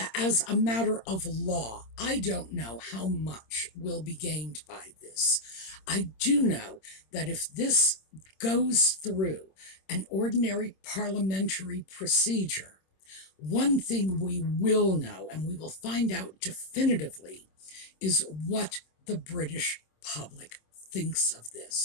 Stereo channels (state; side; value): late; right; 26 ms